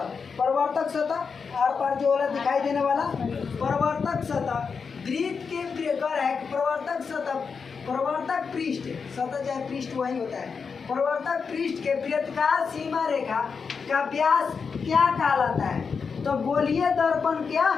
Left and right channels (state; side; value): quieter; right; 5.6 dB